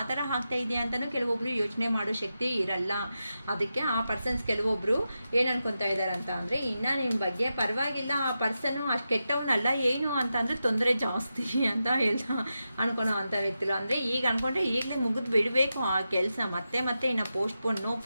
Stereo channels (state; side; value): inverted; both; correlation -0.90